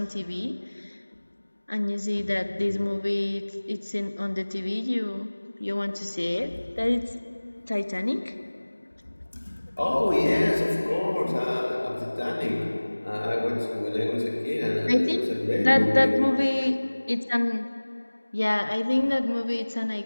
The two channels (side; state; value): both; inverted; correlation -1.00